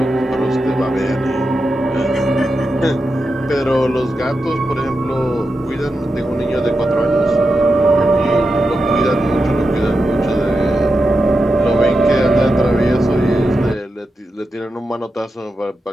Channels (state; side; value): normal; both; correlation 0.89